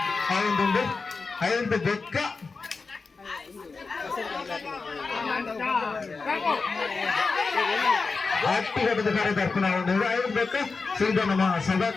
ಅವೊಂದುಂಡು ಐದು ಬೆಕ್ಕ ಹಟ್ಟಿಘಟ್ಟದ ಕರದರ್ಪಣ ಅವೊಂದು ಐದು ಬೆಕ್ಕ ಸೀದಾ ನಮ್ಮ ಸಭಾ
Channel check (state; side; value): quieter; right; 4.3 dB